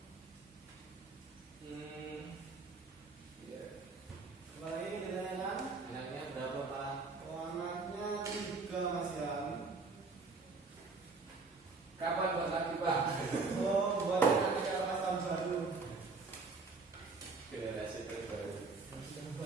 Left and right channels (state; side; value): quieter; left; 4.1 dB